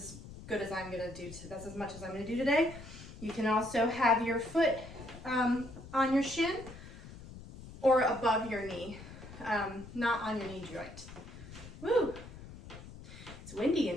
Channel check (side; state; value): left; noise; rumble, 15 dB below the sound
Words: good as I'm gonna do, that's as much as I'm gonna do today. You can also have your foot on your shin or above your knee, not on your knee joint. Woo! It's windy